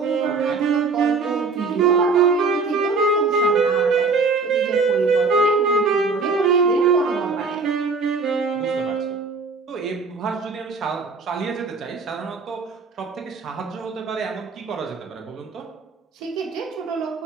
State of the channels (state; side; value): quieter; left; 4.3 dB